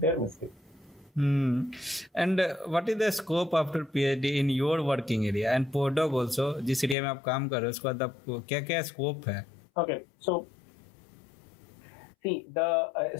mistake. And what is the scope after PhD in your working area and postdoc also, जिस area में आप काम कर रहे हो उसके बाद आपको क्या क्या स्कोप है? Okay, so see, the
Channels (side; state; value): right; drops out; at 7.0 s